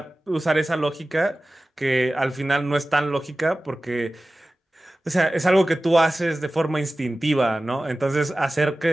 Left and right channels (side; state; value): both; normal; correlation 0.96